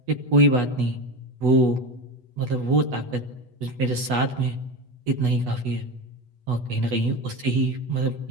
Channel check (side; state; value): left; late; 8.2 ms